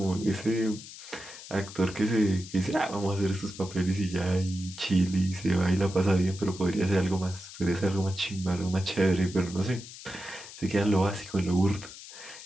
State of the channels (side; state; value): left; noise; hiss, 15 dB below the sound